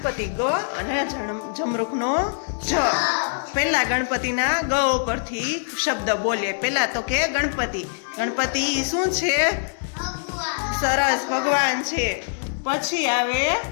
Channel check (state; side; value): silent; right; digital silence